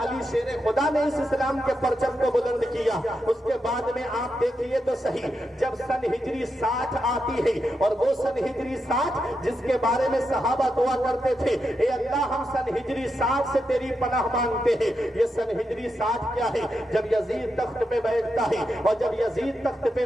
علی شیر خدا نے اس اسلام کے پرچم کو بلند کیا۔ اس کے بعد میں آپ دیکھیے تو صحیح، جب سن ہجری 60 آتی ہے، اور وہ سن ہجری 60 جس کے بارے میں صحابہ دعا کرتے تھے اے اللہ ہم سن ہجری 60 سے تیری پناہ مانگتے ہیں، یہ سن ہجری 60 کیا ہے؟ جب یزید تخت پہ بیٹھتا ہے، اور جب یزید تخت پہ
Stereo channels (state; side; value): normal; both; correlation 0.86